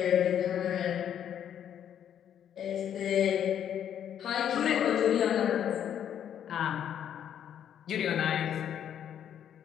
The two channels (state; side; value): quieter; right; 9.5 dB